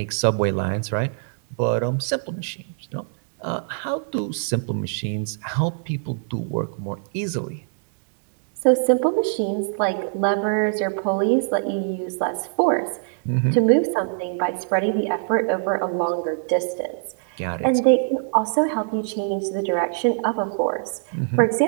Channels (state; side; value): silent; left; digital silence